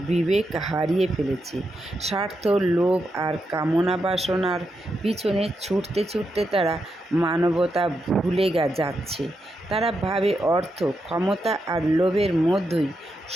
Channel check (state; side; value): normal; both; correlation 0.85